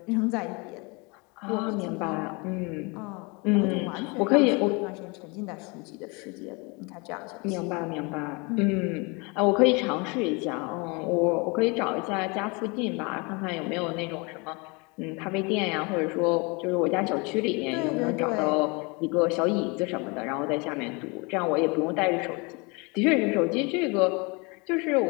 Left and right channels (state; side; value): quieter; right; 29.1 dB